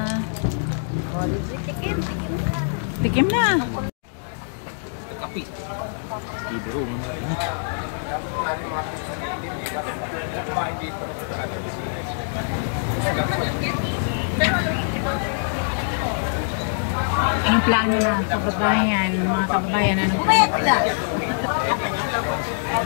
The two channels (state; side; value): silent; right; digital silence